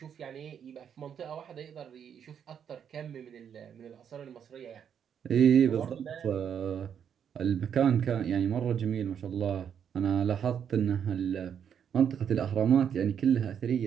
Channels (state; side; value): quieter; left; 8.2 dB